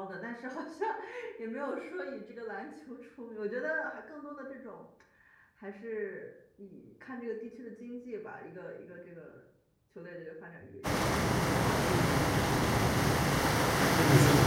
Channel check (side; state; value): both; identical; correlation 1.00